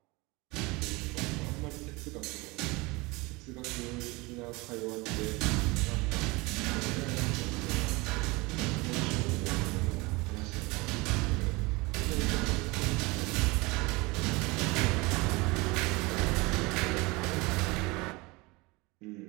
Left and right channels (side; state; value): left; quieter; 24.5 dB